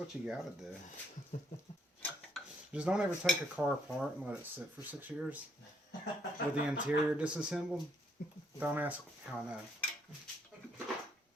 you gotta do. Just don't ever take a car apart and let it sit for 6 years with the interior disassembled. Don't ask how I know.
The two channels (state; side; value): normal; both; correlation 0.70